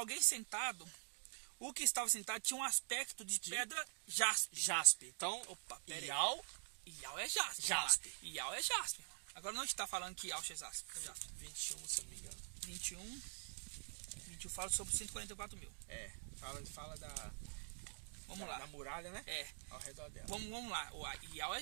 sentado. O que estava sentado tinha um aspecto de pedra jaspe. Então, Ial é jaspe. Ial é jaspe. Agora não está falando que Iaush é jaspe. 21, se eu não me engano. 21 fala sobre 144 mil. Fala Vamos lá. Da muralha, né? Ao redor dela. Vamos lá. O Ial é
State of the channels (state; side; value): silent; left; digital silence